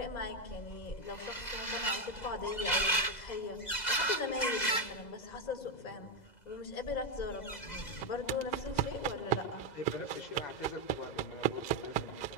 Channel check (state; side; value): late; right; 2.0 ms